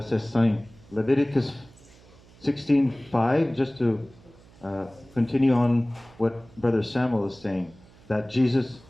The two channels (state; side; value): noise; right; hum, 25 dB below the sound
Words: 5. Leviticus 16:5, just to continue on what Brother Samuel is saying, that Jesus